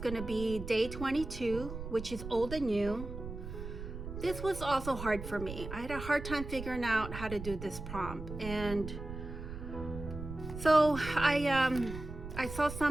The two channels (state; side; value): noise; right; rumble, 9 dB below the sound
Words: to be day 22, which is old and new. This was also hard for me. I had a hard time figuring out how to do this prompt. And so I saw